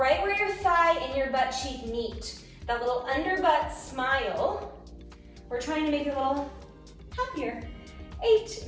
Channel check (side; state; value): both; identical; correlation 1.00